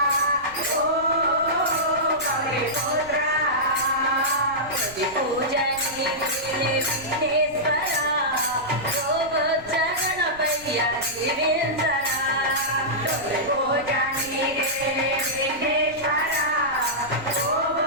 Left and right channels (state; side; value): noise; right; rumble, 21 dB below the sound